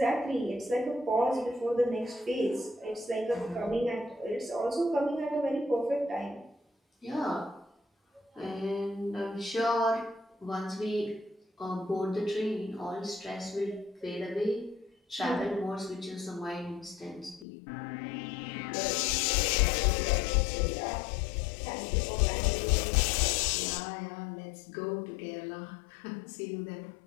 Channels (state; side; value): drops out; right; at 17.4 s